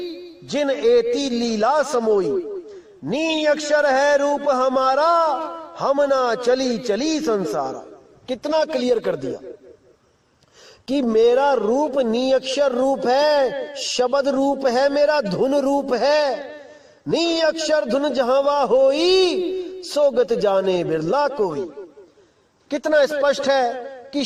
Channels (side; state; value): both; identical; correlation 1.00